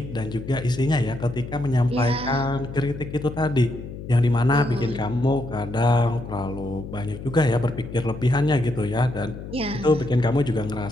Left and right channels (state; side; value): noise; left; hum, 11 dB below the sound